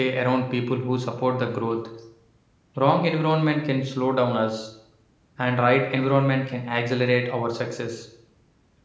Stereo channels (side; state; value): both; identical; correlation 1.00